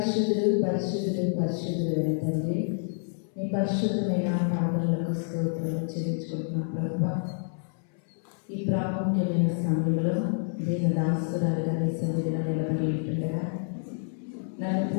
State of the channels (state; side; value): silent; right; 59 dB below the other